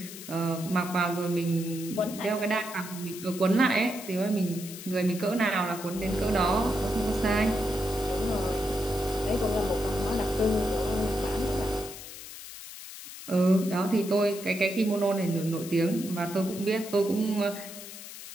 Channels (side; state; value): left; noise; hiss, 13 dB below the sound